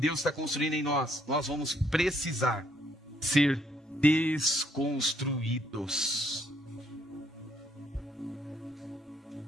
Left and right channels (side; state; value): both; normal; correlation 0.69